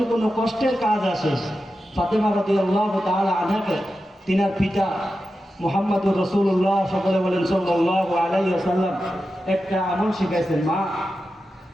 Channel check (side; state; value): both; normal; correlation 0.91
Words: কোনো কষ্টের কাজ আসে, ফাতেমা রাদিয়াল্লাহু তাআলা আনহাকে তিনার পিতা মুহাম্মদুর রাসূলুল্লাহ সকলে বলেন সাল্লাল্লাহু আলাইহি ওয়াসাল্লাম একটা আমল শিখাইছেন, মা